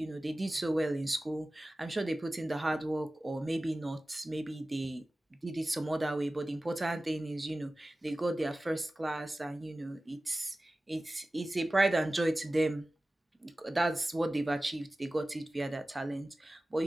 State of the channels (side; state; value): both; normal; correlation 0.96